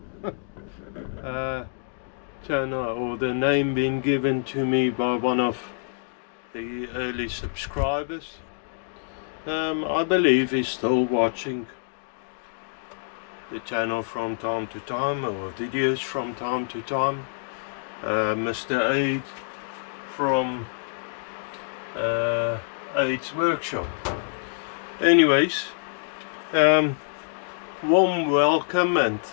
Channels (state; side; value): silent; right; digital silence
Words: Channel, or the name being given to me by one of the early subscribers. I believe he's still watching the channel from time to time, or videos from time to time. Mr. Aid from Aid's Workshop. Anyways, warm welcome and